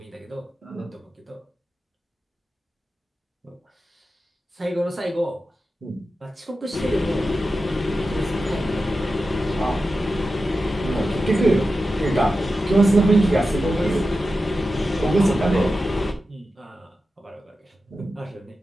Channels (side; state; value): both; normal; correlation 0.92